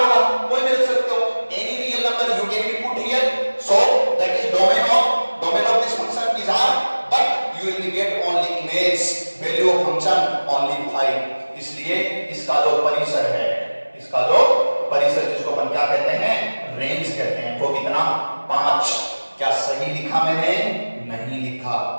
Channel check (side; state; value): both; inverted; correlation -1.00